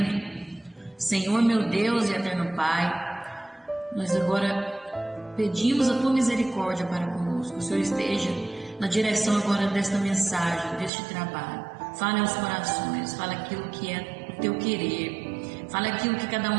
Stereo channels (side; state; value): left; drops out; at 10.9 s